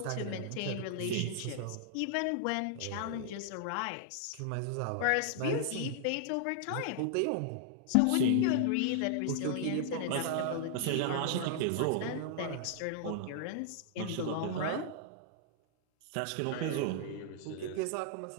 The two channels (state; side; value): different; both; correlation -0.01